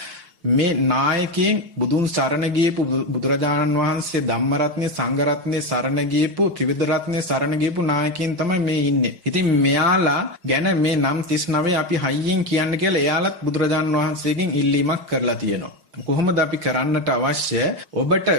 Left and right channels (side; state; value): left; late; 5.6 ms